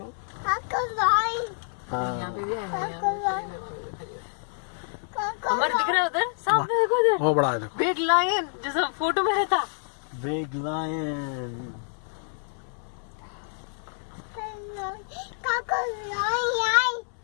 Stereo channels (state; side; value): silent; right; 60 dB below the other